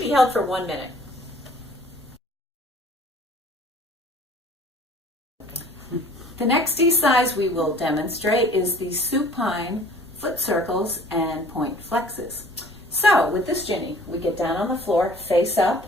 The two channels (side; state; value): both; normal; correlation 0.51